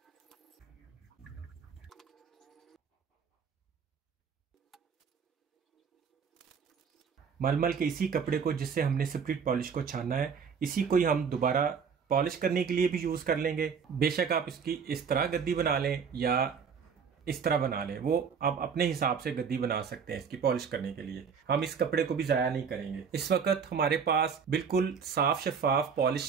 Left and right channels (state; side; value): quieter; left; 6.4 dB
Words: मलमल के इसी कपड़े को जिससे हमने स्प्रिट पॉलिश को छाना है, इसी को ही हम दोबारा पॉलिश करने के लिए भी यूज कर लेंगे। बेशक आप इसकी इस तरह गद्दी बना लें या इस तरह बना लें, वो आप अपने हिसाब से गद्दी बना सकते हैं इसकी पॉलिश करने के लिए। हम इस कपड़े को भी जाया नहीं करेंगे। इस वक्त हमारे पास बिल्कुल साफ शफाफ